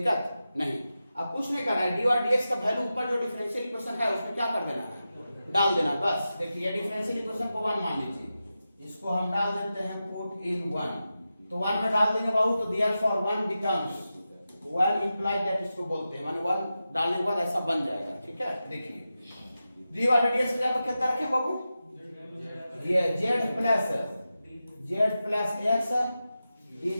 नहीं। अब कुछ नहीं करना है, dy और dx का वैल्यू ऊपर जो डिफरेंशियल इक्वेशन है उसमें क्या कर देना है, डाल देना बस। देखिए डिफरेंशियल इक्वेशन को 1 मान लीजिए, इसको हम डाल देते हैं पुट इन 1, तो 1 में डाल देंगे बाबू, तो देयरफॉर 1 बिकम्स 1 इंप्लाइड दैट, इसको बोलते हैं, माने 1 डालने के बाद ऐसा बन जाएगा। ठीक है, देखिए dy और dx की जगह कितना रखें बाबू, ये z plus x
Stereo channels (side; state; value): both; inverted; correlation -0.92